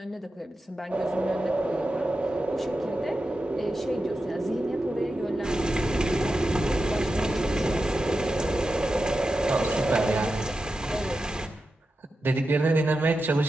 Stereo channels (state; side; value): normal; both; correlation 0.91